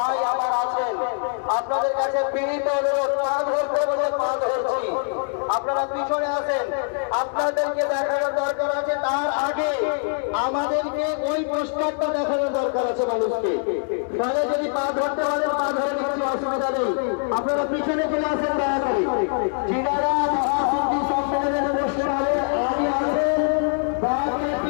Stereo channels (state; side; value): silent; right; digital silence